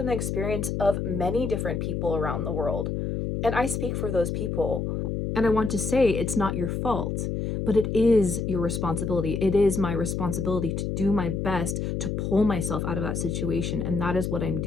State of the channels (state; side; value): noise; left; hum, 2 dB below the sound